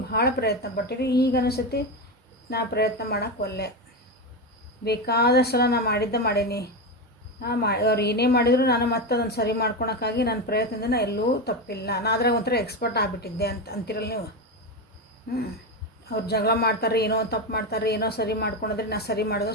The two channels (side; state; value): both; normal; correlation 0.15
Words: ಭಾಳ ಪ್ರಯತ್ನ ಪಟ್ಟಿರಿ. ಈಗ ಅನಿಸುತ್ತೆ ನಾ ಪ್ರಯತ್ನ ಮಾಡೋಕ್ಕೆ ಒಲ್ಲೆ, ಬೇಕಾದಷ್ಟು ಸಲ ನಾ ಮಾಡೀನಿ, ಅವ್ರು ಏನೇ ಮಾಡಿದ್ರು ನಾನು ಮತ್ತೆ ಅದನ್ನು ಸರಿ ಮಾಡ್ಕೊಳಕ್ಕಾಗಿ ನನ್ನ ಪ್ರಯತ್ನದಿಂದ ಎಲ್ಲೂ ತಪ್ಪಿಲ್ಲ, ನಾ ಅದ್ರಾಗ ಒಂಥರ ಎಕ್ಸ್ಪರ್ಟ್ ಆಗಿಬಿಟ್ಟಿದ್ದೆ ಅಂತಿರಲ್ಲ ನೀವು. ಅವ್ರು ಜಗಳ ಮಾಡ್ತಾರೆ, ಏನೋ ತಪ್ಪು ಮಾಡ್ತಾರೆ, ಏನೋ ಸರಿ ಮಾಡ್ಕೊಂಡ್ರೆ ನಾ ಸರಿ